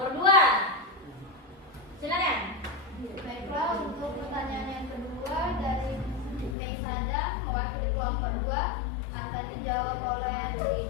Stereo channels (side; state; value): right; drops out; at 6.6 s